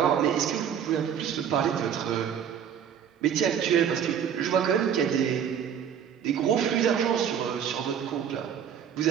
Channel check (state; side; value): quieter; left; 8.4 dB